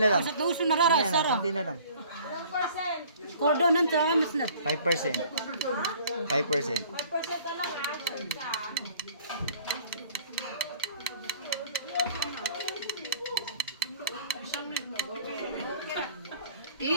lang. Basta tuso na rara, Yan, sara. konti na lang. Kordonan sa mas na. 5%. 5%. 5% na lang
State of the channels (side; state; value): both; inverted; correlation -0.52